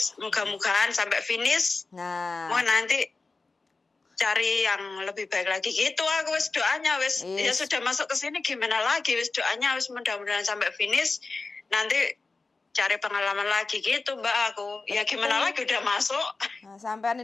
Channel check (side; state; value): right; quieter; 3.8 dB